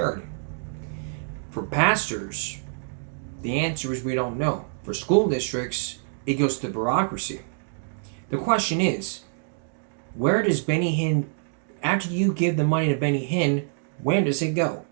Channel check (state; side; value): silent; left; digital silence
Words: For pastors, the answer is we don't know. For school districts, it goes to the bureaucracy. The question is, where does Benny Hinn, after you give the money to Benny Hinn, where does it go?